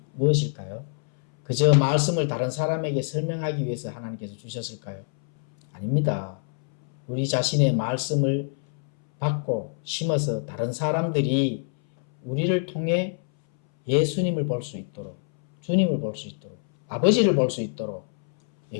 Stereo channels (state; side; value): silent; right; 61 dB below the other